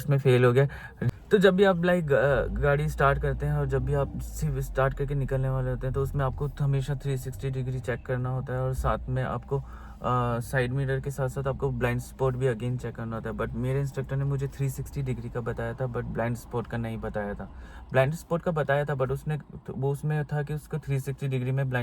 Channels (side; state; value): both; identical; correlation 1.00